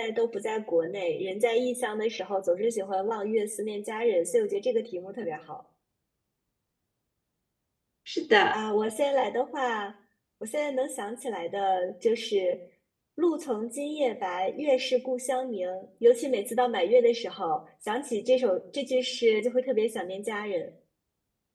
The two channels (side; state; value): both; identical; correlation 1.00